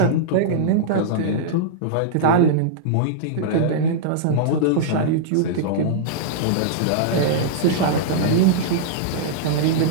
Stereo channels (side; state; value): both; different; correlation -0.02